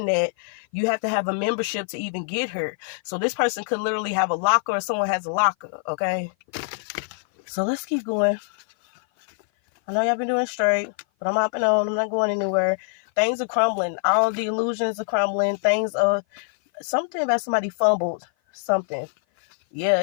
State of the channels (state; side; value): silent; right; 56 dB below the other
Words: at, you have to have a membership to even get her. So this person could literally have a locker, or someone has a locker. Okay. So let's keep going. I know y'all been doing straight, but I'm hopping on. I'm not going anywhere. Things are crumbling. All the illusions are crumbling. Things are... Something about somebody fumbled something. Yeah,